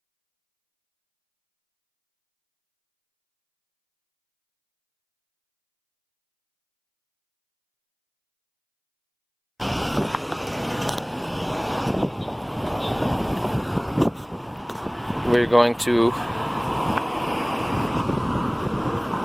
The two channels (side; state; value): both; identical; correlation 1.00